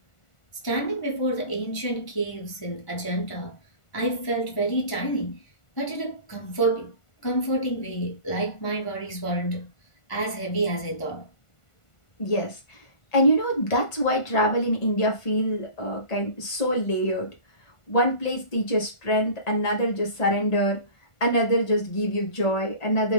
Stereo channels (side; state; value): right; late; 1.5 ms